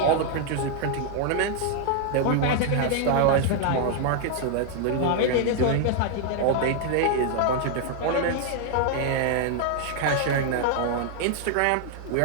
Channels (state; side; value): different; both; correlation 0.00